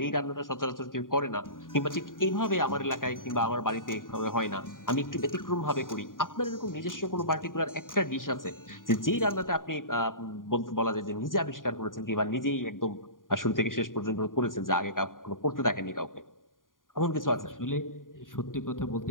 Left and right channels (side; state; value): right; late; 0.90 ms